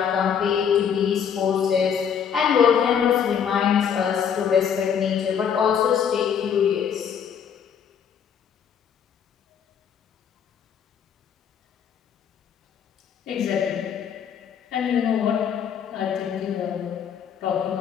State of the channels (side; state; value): right; quieter; 7.8 dB